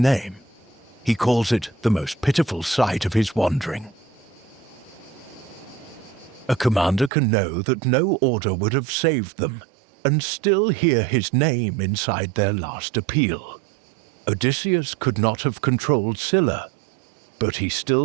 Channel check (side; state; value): left; drops out; at 7.1 s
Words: He calls it the most pitiful sight of his wandering. A commander can know that no order would have saved them, and still hear his name inside their last appeal. Odysseus could not have controlled Scylla, but he